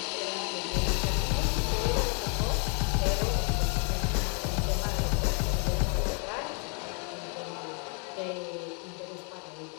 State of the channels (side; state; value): right; quieter; 37.9 dB